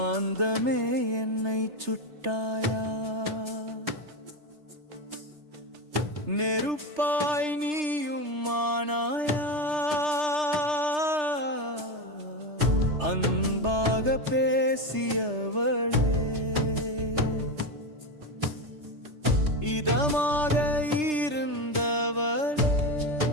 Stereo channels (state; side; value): late; left; 3.3 ms